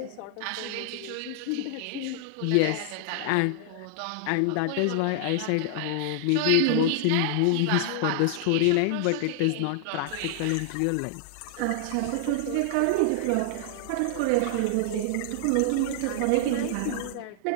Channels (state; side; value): different; both; correlation -0.01